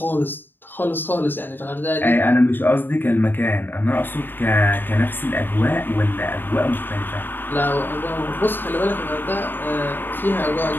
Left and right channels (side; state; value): right; late; 0.094 ms